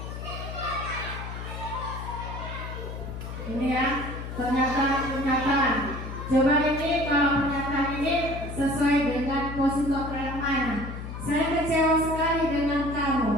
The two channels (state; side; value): noise; left; hum, 8 dB below the sound